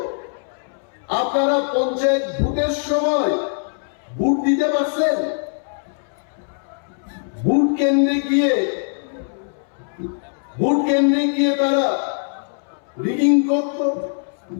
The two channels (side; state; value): right; silent; 65 dB below the other